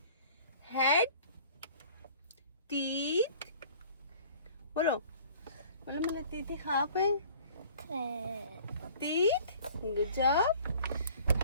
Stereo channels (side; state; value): both; inverted; correlation -0.50